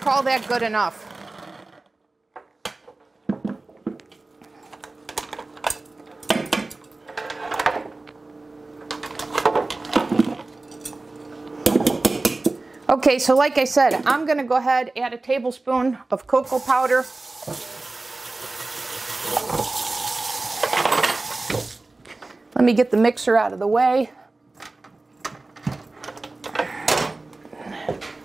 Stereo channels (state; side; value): quieter; left; 3.2 dB